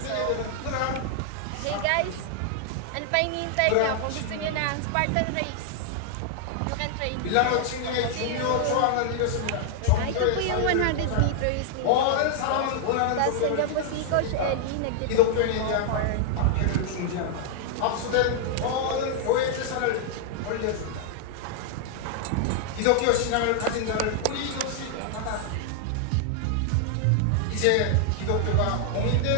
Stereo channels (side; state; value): both; different; correlation 0.00